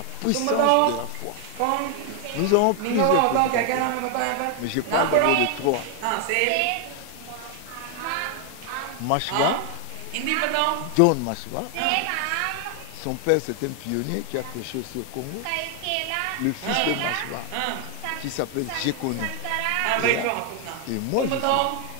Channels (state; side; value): different; both; correlation 0.00